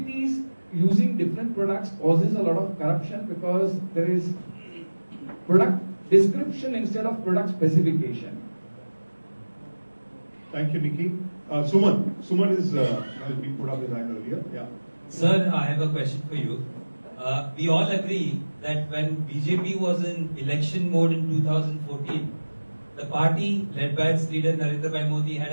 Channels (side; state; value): both; inverted; correlation -1.00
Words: using different products causes a lot of corruption, because there is product description instead of product specification. Thank you, Nikki. Suman. Suman has been put up his hand earlier. Yeah. Sir, I have a question for you. We all agree that when BJP was in election mode in 2014, the party led by its leader Narendra Bhai Modi